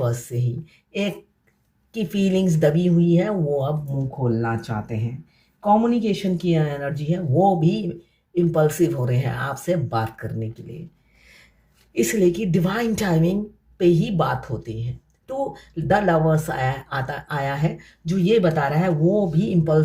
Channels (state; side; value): identical; both; correlation 1.00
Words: से ही। एक की फीलिंग्स दबी हुई है, वो अब मुंह खोलना चाहते हैं। कम्युनिकेशन की एनर्जी है, वो भी इम्पल्सिव हो रहे हैं आपसे बात करने के लिए, इसलिए कि डिवाइन टाइमिंग पे ही बात होती है। तो द लवर्स आया है जो ये बता रहा है वो भी